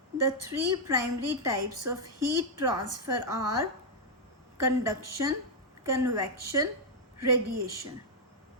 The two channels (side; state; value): both; normal; correlation -0.02